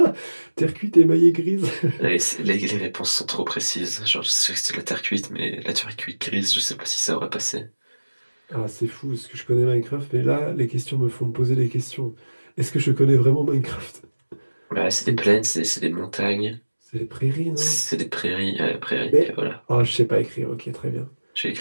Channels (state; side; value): inverted; both; correlation -1.00